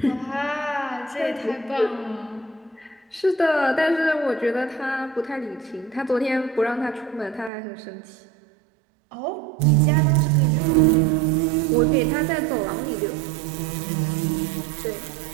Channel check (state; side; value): drops out; left; at 7.5 s